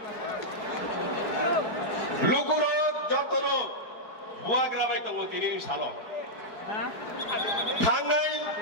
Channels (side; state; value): right; late; 4.8 ms